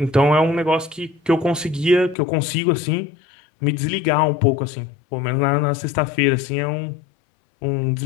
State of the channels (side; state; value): right; drops out; at 2.1 s